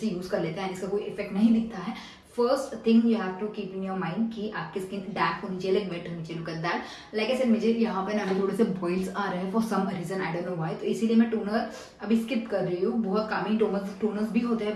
यूज़ कर लेते हैं, इसका कोई इफेक्ट नहीं दिखता है। First thing you have to keep in your mind कि आपकी स्किन डैम्प होनी चाहिए, लाइक वेट होनी चाहिए। लुक एट दैट, लाइक ऐसे मुझे यहाँ पे ना अभी थोड़े से बॉइल्स आ रहे हैं for some reason, I don't know why, तो इसीलिए मैं टोनर अभी स्किप कर रही हूँ। बहुत कामी टोनर्स भी होते हैं,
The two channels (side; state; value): both; identical; correlation 1.00